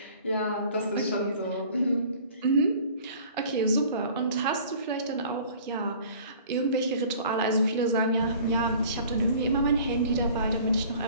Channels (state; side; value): inverted; both; correlation -0.49